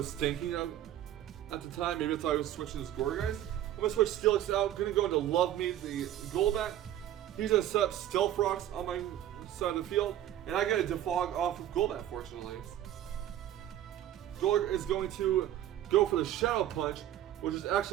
thinking of at the time. Maybe I thought I was switching his Gourgeist. I'm going to switch Steelix out. Going to go into Love Me, the Golbat. He's going to set up Stealth Rocks on my side of the field. And I get a Defog off of Golbat, fortunately. Golart is going to go for the Shadow Punch, which is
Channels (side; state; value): left; quieter; 12.2 dB